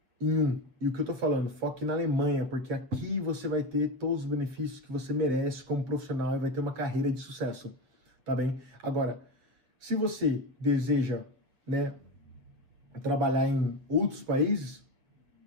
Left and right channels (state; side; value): late; left; 7.7 ms